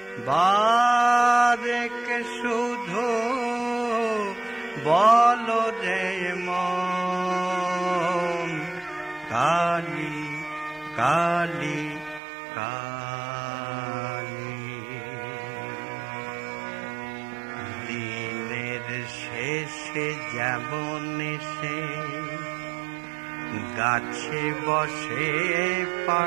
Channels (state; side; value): drops out; left; at 12.2 s